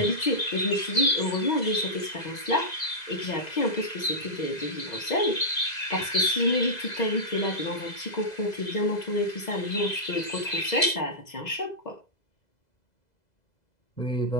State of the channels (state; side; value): late; right; 2.0 ms